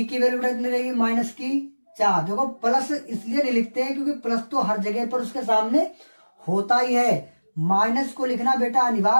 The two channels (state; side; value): inverted; both; correlation -1.00